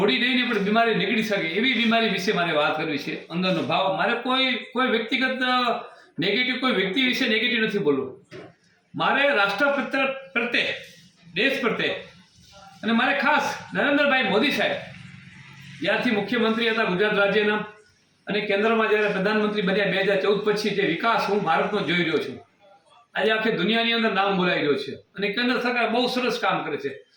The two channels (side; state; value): both; identical; correlation 1.00